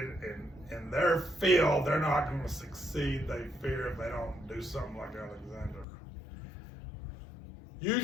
in their field. They're not going to succeed, they fear, if they don't do something like Alexander. You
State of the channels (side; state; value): right; drops out; at 5.9 s